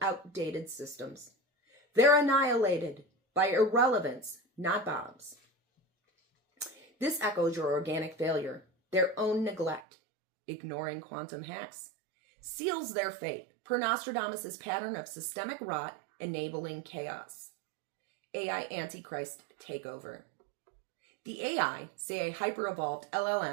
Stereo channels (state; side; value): drops out; left; at 9.8 s